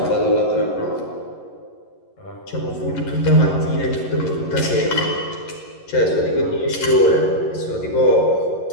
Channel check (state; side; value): late; right; 11 ms